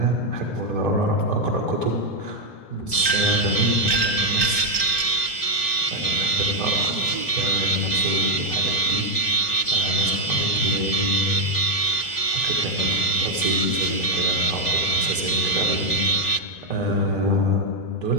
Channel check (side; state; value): right; late; 3.2 ms